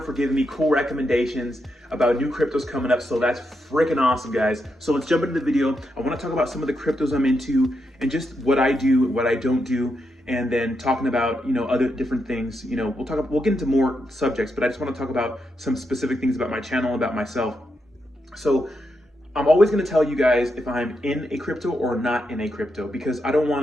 for giving me cool recommendations about new cryptos coming up. So that's freaking awesome, guys. So let's jump into the video. I want to talk about some of the cryptos I'm into and just what I do, what I don't do, and then talking about, other different things. We'll get into more subjects, but I just want to talk about some specific things about my channel, about myself. So I'm always going to tell you guys if I'm in a crypto or not in a crypto, because I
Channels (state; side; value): normal; both; correlation 0.83